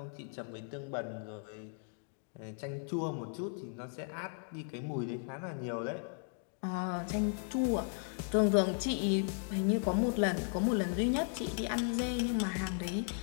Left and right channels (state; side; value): silent; right; 54 dB below the other